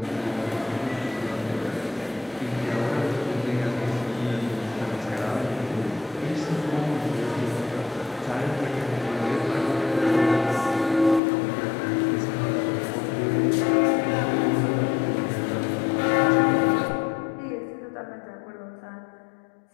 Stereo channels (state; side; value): drops out; right; at 11.2 s